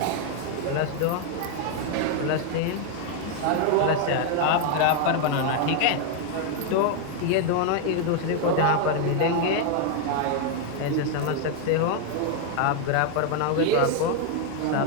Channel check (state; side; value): different; both; correlation 0.00